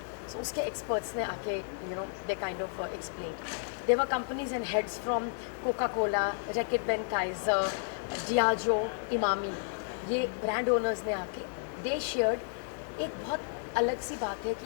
So उसके एक्सपर्ट्स ने आके they kind of explain. There were companies and heads from Coca Cola, Reckitt Benckiser, Diageo, Emami, ये ब्रांड ओनर्स ने आके दे शेयर्ड एक बहुत अलग सी बात है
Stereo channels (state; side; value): silent; right; 56 dB below the other